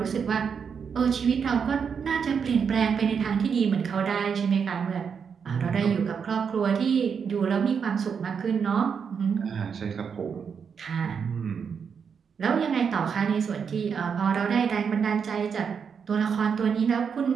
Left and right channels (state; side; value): quieter; left; 6.6 dB